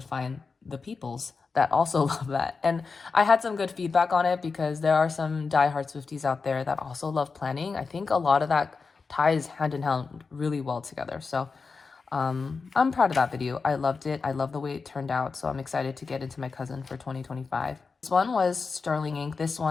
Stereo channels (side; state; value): right; quieter; 4.7 dB